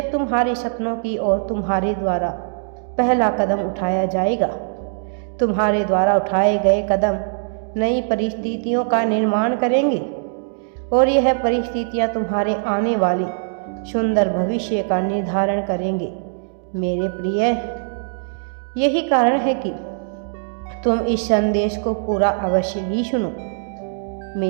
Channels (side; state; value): left; silent; digital silence